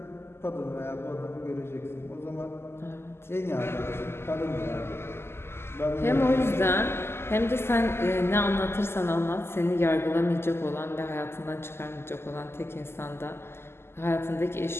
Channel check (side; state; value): right; late; 0.12 ms